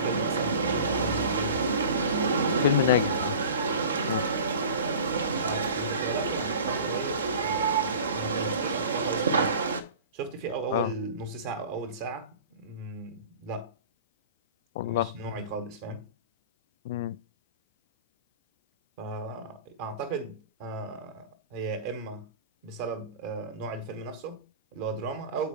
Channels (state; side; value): inverted; both; correlation -0.39